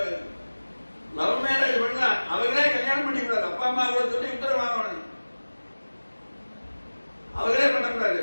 லவ் மேரேஜ் பண்ணா அவங்களே கல்யாணம் பண்ணிக்கூடாது. அப்பா அம்மா கூட சொல்லி உத்தரவு வாங்கணும். அவங்களே பண்ணக்கூடாது,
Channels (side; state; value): both; inverted; correlation -1.00